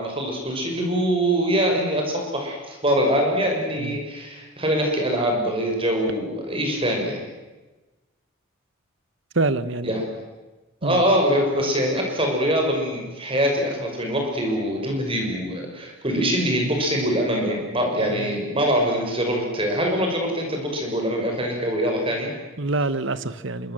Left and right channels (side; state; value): both; normal; correlation 0.21